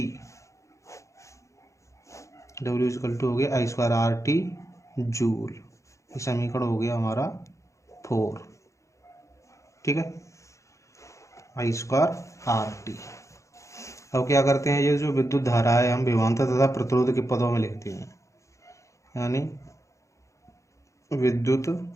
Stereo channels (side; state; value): right; late; 0.15 ms